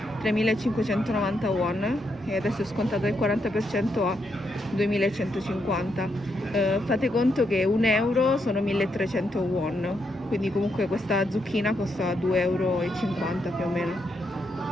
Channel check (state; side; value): normal; both; correlation 0.80